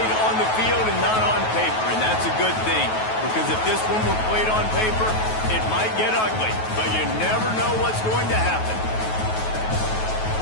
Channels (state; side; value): late; right; 9.3 ms